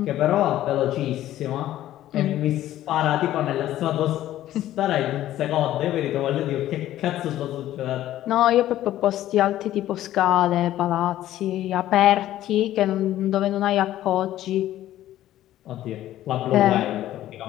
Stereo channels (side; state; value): right; quieter; 13.5 dB